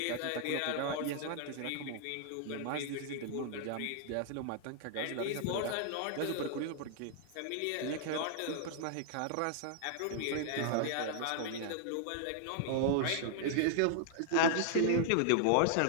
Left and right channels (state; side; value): different; both; correlation 0.00